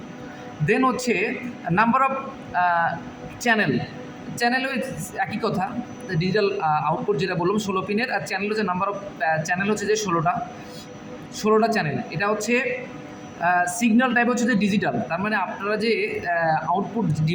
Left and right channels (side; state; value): both; identical; correlation 1.00